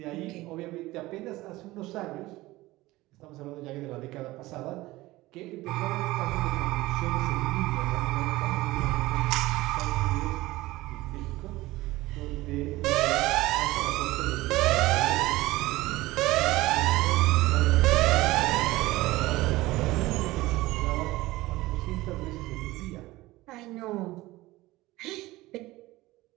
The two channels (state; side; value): quieter; left; 18.8 dB